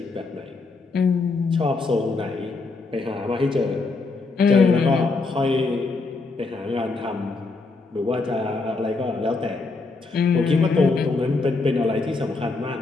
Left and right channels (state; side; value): quieter; right; 3.8 dB